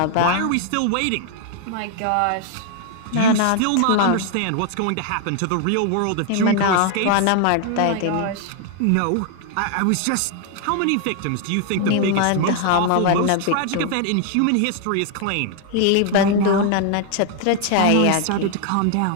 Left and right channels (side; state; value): both; different; correlation 0.00